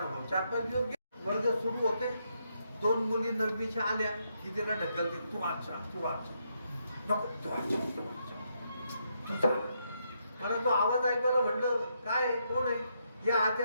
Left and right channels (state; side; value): inverted; both; correlation -0.79